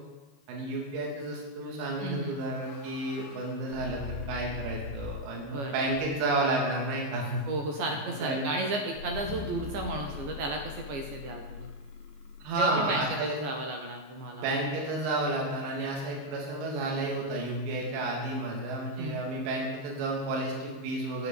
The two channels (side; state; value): left; late; 14 ms